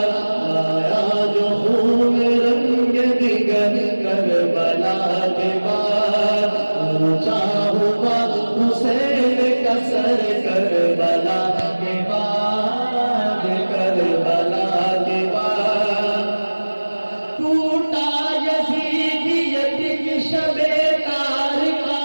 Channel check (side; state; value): both; inverted; correlation -1.00